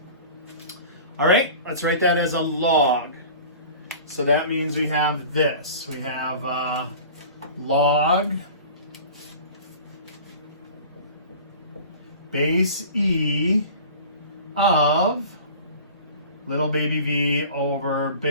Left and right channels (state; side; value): inverted; both; correlation -0.40